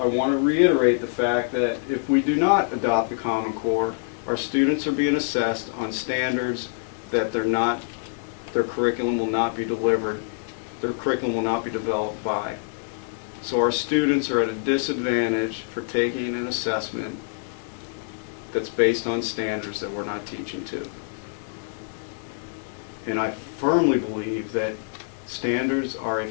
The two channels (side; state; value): right; silent; digital silence